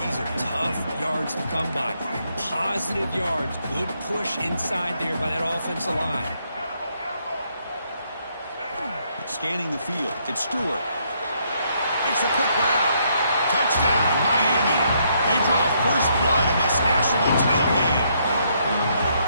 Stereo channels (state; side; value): inverted; both; correlation -0.73